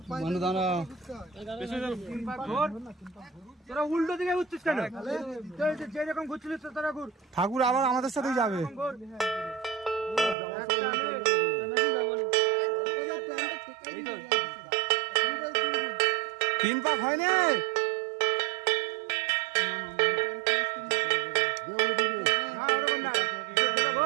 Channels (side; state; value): left; drops out; at 10.4 s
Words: তোরা উল্টো দিকে ঘুরছিস কেন? যেরকম ঘুরছিলিস তোরা ঘুর। ঠাকুর আবার আমাদের সাথেই যাবে তিন পাক হয়নি